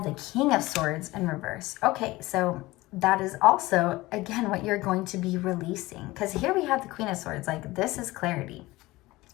the King of Swords in reverse. Okay, so that is also, again, what you're going to be releasing. Because here we have the Queen of Swords. Like, this is clarity.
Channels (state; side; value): quieter; right; 19.5 dB